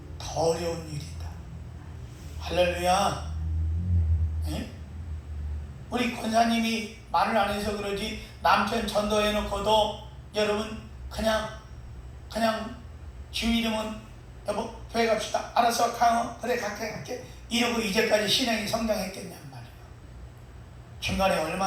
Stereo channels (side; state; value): both; identical; correlation 1.00